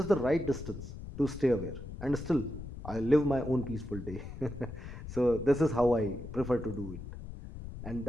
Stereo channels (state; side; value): noise; left; rumble, 10 dB below the sound